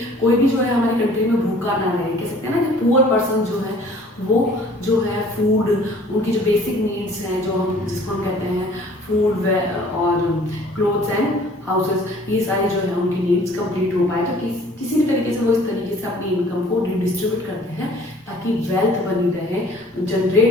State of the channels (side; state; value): both; normal; correlation 0.53